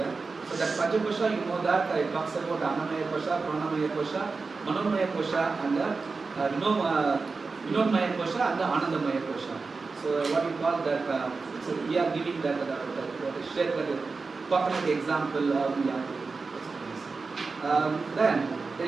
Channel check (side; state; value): left; quieter; 4.3 dB